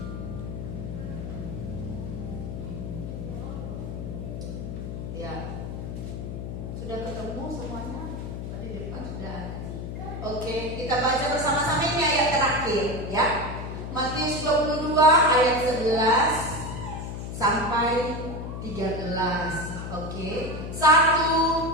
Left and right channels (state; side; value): noise; left; hum, 6 dB below the sound